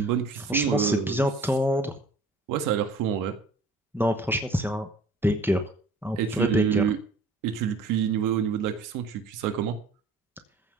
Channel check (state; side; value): quieter; left; 3.2 dB